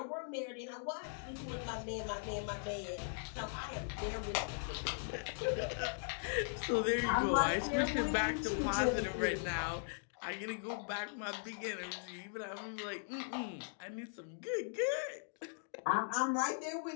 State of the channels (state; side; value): silent; right; digital silence